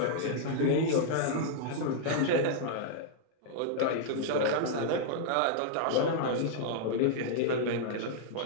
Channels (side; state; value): both; different; correlation -0.01